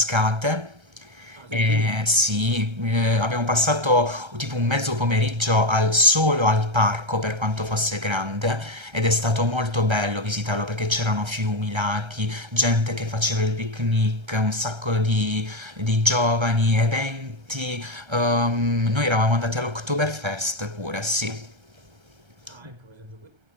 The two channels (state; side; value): late; left; 1.3 ms